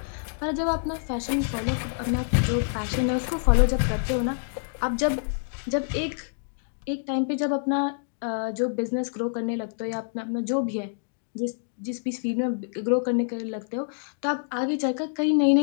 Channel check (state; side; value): silent; right; digital silence